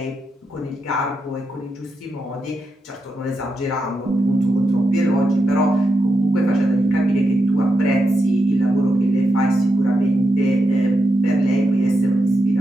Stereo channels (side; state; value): both; normal; correlation 0.86